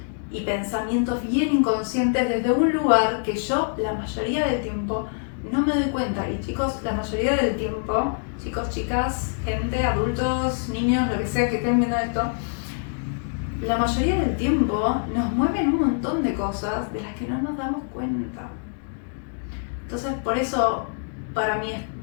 y pensamientos bien inconscientes desde un lugar que yo la mayoría del tiempo no me doy cuenta. Y chicos, la mayoría del tiempo, chicos, chicas, gente, adultos, niños, lo que sea que estén viendo esto, la mayoría del tiempo nos mueven un montón de cosas de las que no nos damos cuenta. Entonces, por eso para mí es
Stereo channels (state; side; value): silent; right; digital silence